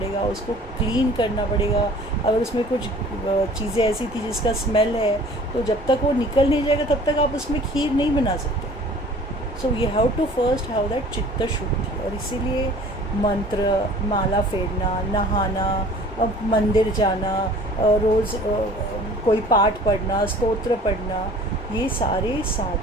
उसको क्लीन करना पड़ेगा। अगर उसमें कुछ चीज़ें ऐसी थी जिसका स्मेल है, तो जब तक वो निकल नहीं जाएगा तब तक आप उसमें खीर नहीं बना सकते। So you have to first have that चित्त शुद्धि। और इसीलिए मंत्र, माला फेरना, नहाना, अब मंदिर जाना, रोज़ कोई पाठ पढ़ना, स्तोत्र पढ़ना, ये सारे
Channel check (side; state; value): both; normal; correlation 0.48